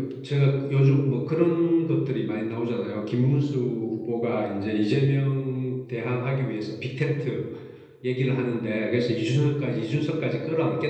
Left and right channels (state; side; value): identical; both; correlation 1.00